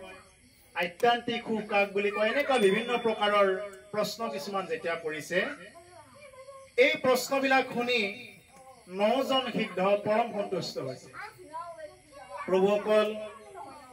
আধ্যাত্মিক সুখ কাক বুলি কয় এনেকুৱা বিভিন্ন প্ৰকাৰৰ প্ৰশ্ন কিছুমান যেতিয়া কৰিছে এই প্ৰশ্নবিলাক শুনি 9 জন সিদ্ধ পৰম সন্তুষ্ট হৈছে প্ৰভুসকল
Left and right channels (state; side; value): identical; both; correlation 1.00